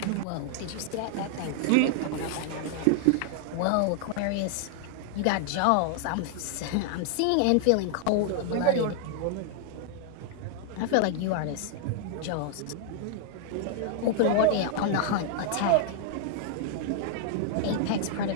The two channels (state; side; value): different; both; correlation 0.00